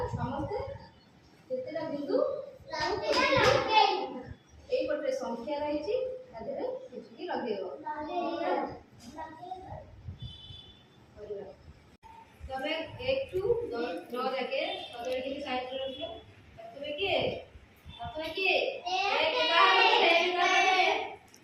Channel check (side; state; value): both; identical; correlation 1.00